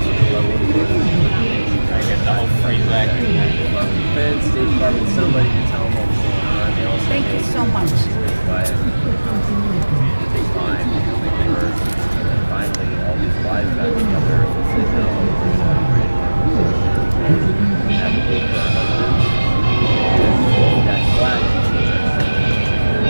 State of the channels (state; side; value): inverted; both; correlation -1.00